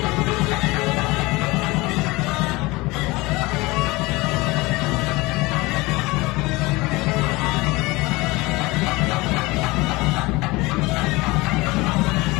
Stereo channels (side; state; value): right; quieter; 22.4 dB